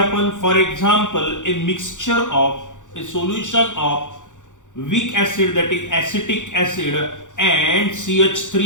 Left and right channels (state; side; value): late; right; 0.86 ms